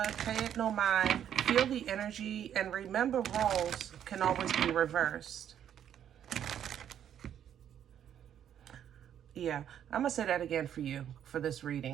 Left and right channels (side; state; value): left; quieter; 9.7 dB